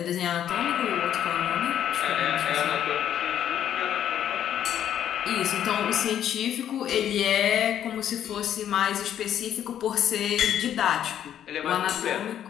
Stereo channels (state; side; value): quieter; right; 10.2 dB